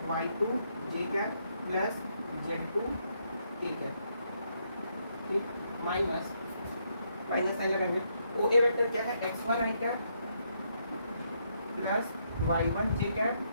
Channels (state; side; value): inverted; both; correlation -0.76